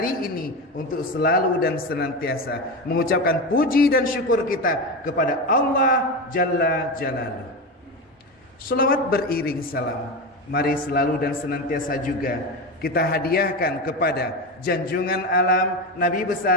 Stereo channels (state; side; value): normal; both; correlation 0.19